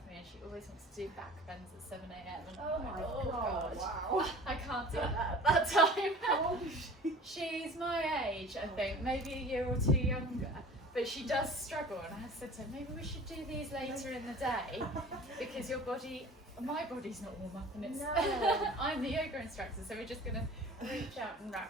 me, and she always wants to do back bends at 7 a.m. and Oh my God. Wow. I can't do that at that time. How old is she? She's my age, I think, maybe a year or 2 younger. But she does struggle, and I said to her, maybe we should do these later in the day because my body's not warm up, and it's I'm the yoga instructor, so we're just gonna reach out and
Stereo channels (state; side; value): normal; both; correlation 0.43